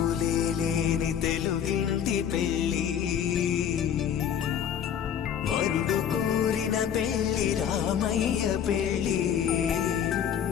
లేని తెలుగింటి పెళ్లి వరుడు కోరిన పెళ్లి రామయ్య పెళ్లి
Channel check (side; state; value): right; quieter; 8.7 dB